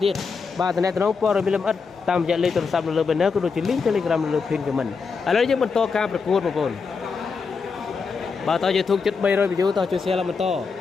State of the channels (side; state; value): right; quieter; 5.1 dB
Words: ទៀតបាទតំណែងព័ត៌មានលម្អិតតាមរយៈលេខទូរស័ព្ទនៅលើ banner ក៏ដូចជា link Telegram នៅលើ pin comment ឥឡូវយើងបន្តការប្រកួតបងប្អូនបាទតើ YouTube ជិត300 view តើជួយ share ឡើងបន្ត